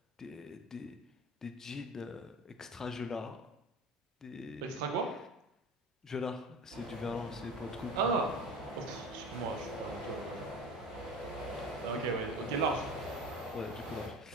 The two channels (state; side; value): normal; both; correlation 0.33